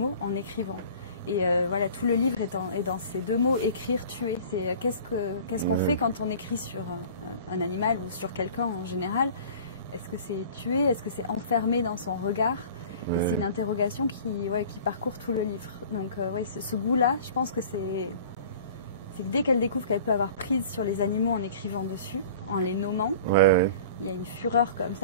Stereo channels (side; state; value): both; inverted; correlation -0.43